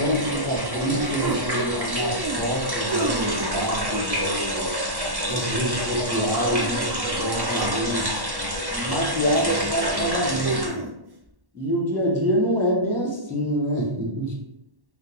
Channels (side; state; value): left; late; 1.1 ms